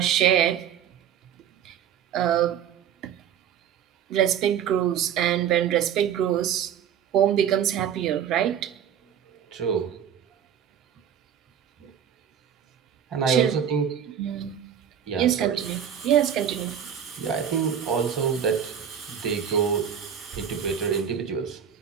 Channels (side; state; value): left; quieter; 8.8 dB